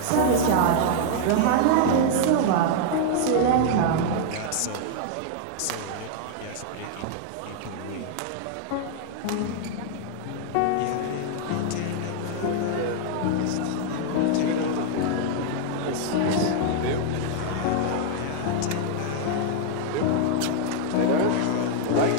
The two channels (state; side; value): different; both; correlation -0.01